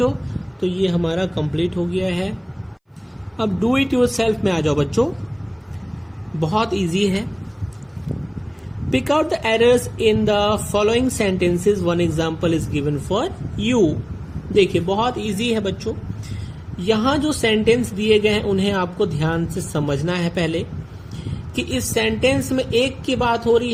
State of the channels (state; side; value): identical; both; correlation 1.00